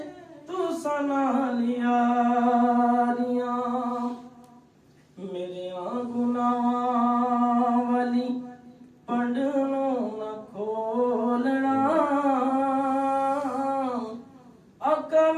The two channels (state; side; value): identical; both; correlation 1.00